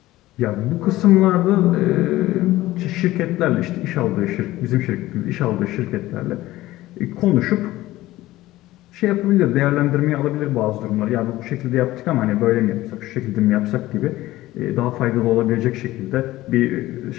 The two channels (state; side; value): quieter; right; 16.7 dB